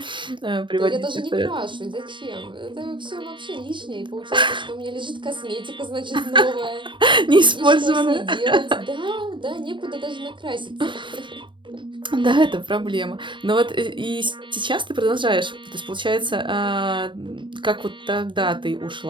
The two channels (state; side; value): late; left; 0.23 ms